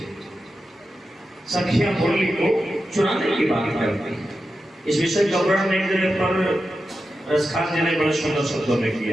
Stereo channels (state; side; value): normal; both; correlation 0.90